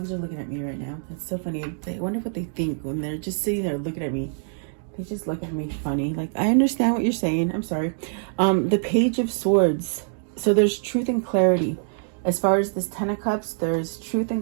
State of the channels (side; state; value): left; silent; digital silence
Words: are looking at me right now. It's so funny. I wonder what they think when they're just sitting there looking at me. They just look at me funny. Like, I understand what you're saying. I'm sorry. The Page of Swords. So there's truth and clarity. As far as this 10 of Cups, there's truth